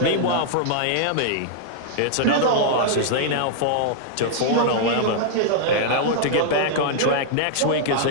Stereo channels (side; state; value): both; different; correlation -0.01